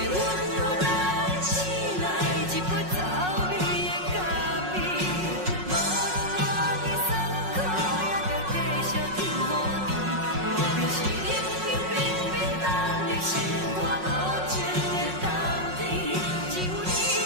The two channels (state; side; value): late; left; 5.5 ms